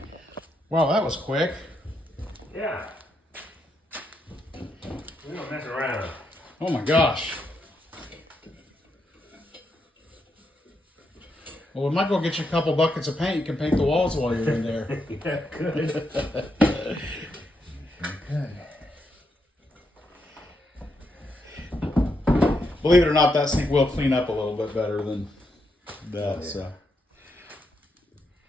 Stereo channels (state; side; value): normal; both; correlation 0.81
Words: Wow, that was quick. Yeah. We don't mess around. Oh my gosh. Well, we might go get you a couple buckets of paint. You can paint the walls while you're in there. Yeah, good. Good. Believe it or not, that sink will clean up a little bit better than that. Oh, yeah. So